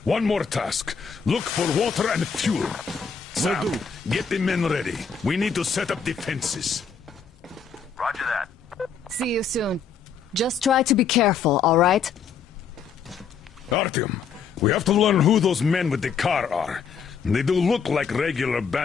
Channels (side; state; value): right; quieter; 6.2 dB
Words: one more task. Look for water and fuel. Sam, Will do. Get the men ready. We need to set up defenses. Roger that. See you soon. Just try to be careful, alright? Artyom, we have to learn who those men with the car are. They do look like regular